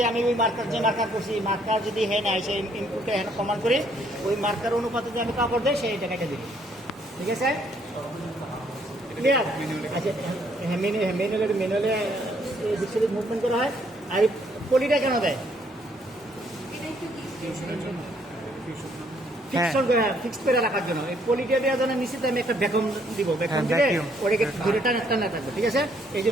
আমি ওই মার্কার যে মার্কার করছি মার্কার যদি হ্যাঁ আসে ইনপুটটা এখানে কমান্ড করি ওই মার্কার অনুপাতে যে আমি কাপড় দেয় সেই টাকাটা দিই ঠিক আছে ক্লিয়ার আচ্ছা হ্যাঁ ম্যানুয়ালে দিক সাইড মুভমেন্ট করা হয় আর এই পলিটা কেন দেয় এটা একটু কি ফিক্সড করে রাখার জন্য এই পলিটা দেওয়ার জন্য নিশ্চিত আমি একটা ভ্যাকুম দিব ভ্যাকুম দিলে vacuum। ওটাকে ধরে টানা থাকবে ঠিক আছে এই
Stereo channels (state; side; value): normal; both; correlation 0.67